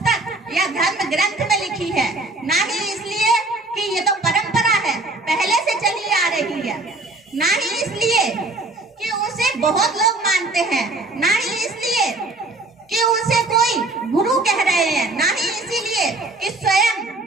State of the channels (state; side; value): quieter; left; 3.0 dB